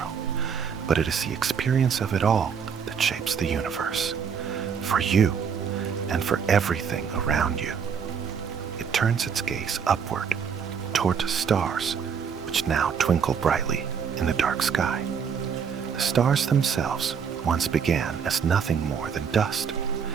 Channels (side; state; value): left; quieter; 6.8 dB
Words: but it is the experience of it all that shapes the universe, for you and for everything around you. It turns its gaze upward, toward the stars, which now twinkle brightly in the dark sky. The stars themselves once began as nothing more than dust,